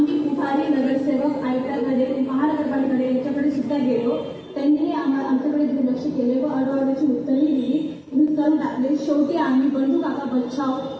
पुढारी नगरसेवक आयुक्तांकडे महानगरपालिकेकडे याच्याकडे सुद्धा गेलो. त्यांनी आमच्याकडे दुर्लक्ष केले व अडवडची उत्तरही दिली करून टाकले. शेवटी आम्ही बंधू काका बचाव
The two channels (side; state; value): both; identical; correlation 1.00